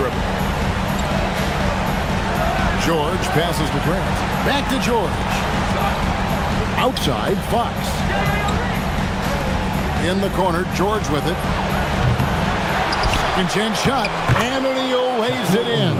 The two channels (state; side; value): identical; both; correlation 1.00